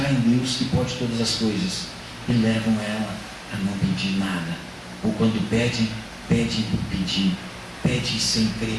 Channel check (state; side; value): identical; both; correlation 1.00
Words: em Deus que pode todas as coisas, e levam ela a não pedir nada, ou quando pedem por pedir, pedem sem crer